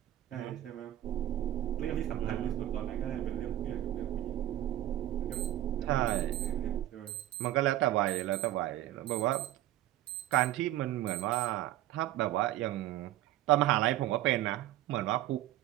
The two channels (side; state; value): left; quieter; 13.9 dB